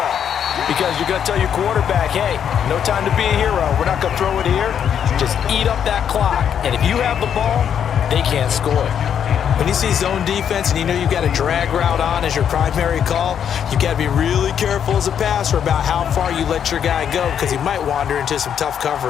Because you're going to tell your quarterback, hey, no time to be a hero. We're not going to throw it here. Just eat up that clock. And if you have the ball, they can't score. When you see zone defense and you know you've got a drag route on as your primary call, you've got to be really careful as a passer about how far you let your guy go because he might wander into some tough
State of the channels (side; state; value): right; quieter; 8.5 dB